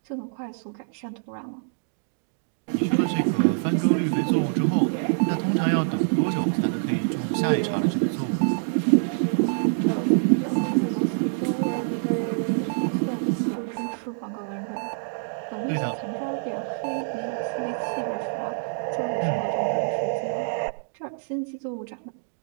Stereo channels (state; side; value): silent; left; digital silence